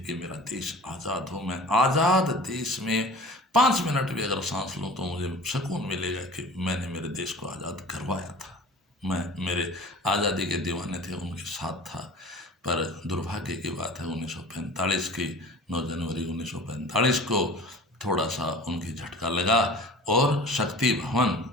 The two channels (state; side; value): normal; both; correlation 0.41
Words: कि मेरा देश आज़ाद हो, मैं आज़ाद देश में 5 मिनट भी अगर सांस लूं तो मुझे सुकून मिलेगा कि मैंने मेरे देश को आज़ाद करवाया था। मैं मेरे आज़ादी के दीवाने थे, उनके साथ था। पर दुर्भाग्य की बात है, 1945 की 9 जनवरी 1945 को थोड़ा सा उनकी झटका लगा, और शक्ति भवन,